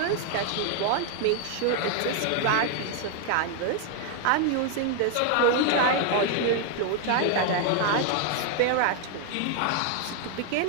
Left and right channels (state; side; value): different; both; correlation 0.00